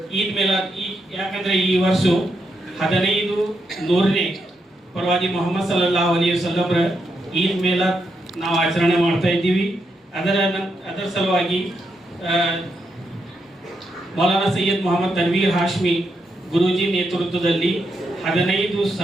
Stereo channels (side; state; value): both; normal; correlation 0.82